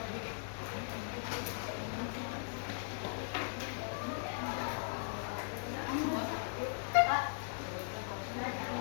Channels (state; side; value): silent; right; digital silence